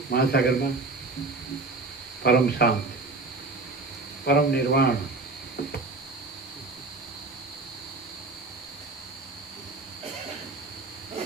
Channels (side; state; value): left; quieter; 3.5 dB